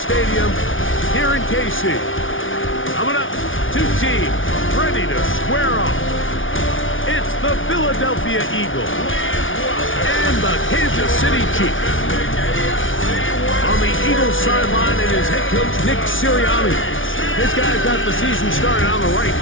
here in KC. Coming up, two teams ready to square off. It's the Philadelphia Eagles and the Kansas City Chiefs. On the Eagles sideline is head coach Nick Sirianni. This guy's got the season started on the right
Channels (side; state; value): right; late; 0.57 ms